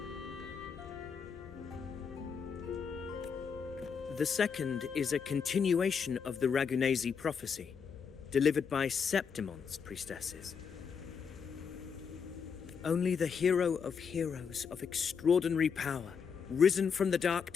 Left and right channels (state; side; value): quieter; right; 6.4 dB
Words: The second is a continuation of the Ragunesi prophecy, delivered by Septimonte's priestesses. Only the hero of heroes of extraordinary power, risen from the dark